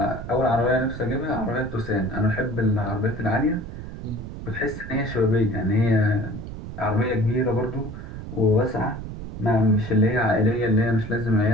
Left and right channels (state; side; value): noise; right; rumble, 10 dB below the sound